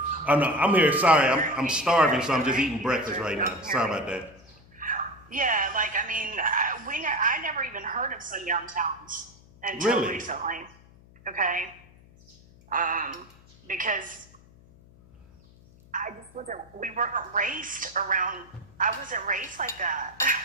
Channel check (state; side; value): noise; left; hum, 25 dB below the sound